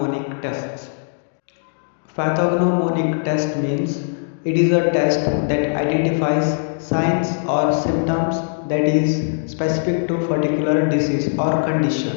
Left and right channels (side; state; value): right; silent; digital silence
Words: tests. Pathognomonic test means it is a test that identifies signs or symptoms that is specific to particular disease or condition.